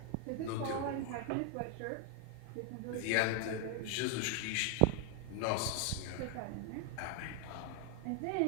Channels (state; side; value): different; both; correlation 0.00